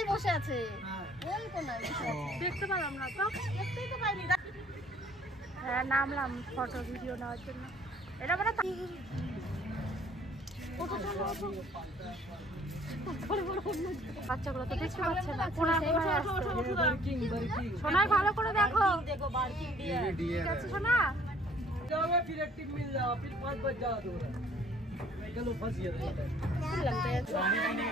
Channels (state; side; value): normal; both; correlation 0.58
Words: বসে আছে, ওই কোনায় বসে আছে। দেখতে পেলাম না তো, দেখতেই তো পাইনি। হ্যাঁ, নামলাম ফটো ভিডিও নেওয়ার জন্য। এটা মানে বাচ্চাগুলো তো দেখতে পাচ্ছে না। সোনাই ভালো করে দেখো, ঠিক আছে সোনা? फिर एक्टिव मिल जाओ, फिर 5 बज जाओ तो चलो फंस गया